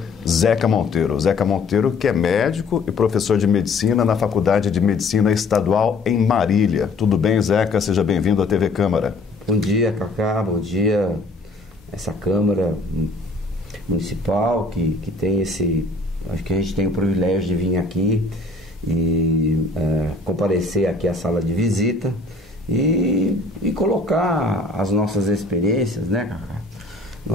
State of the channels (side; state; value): right; quieter; 3.2 dB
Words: Zeca Monteiro. Zeca Monteiro, que é médico e professor de medicina na Faculdade de Medicina Estadual em Marília. Tudo bem, Zeca? Seja bem-vindo à TV Câmara. Bom dia, Cacá. Bom dia. Essa Câmara Municipal que tem esse... Acho que a gente tem o privilégio de vir aqui e comparecer aqui à sala de visita e colocar as nossas experiências, né, Cacá?